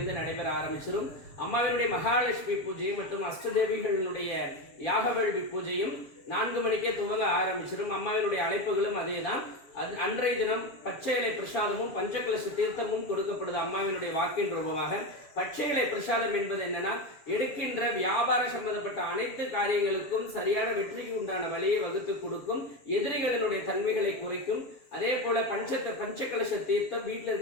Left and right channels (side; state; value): right; late; 7.2 ms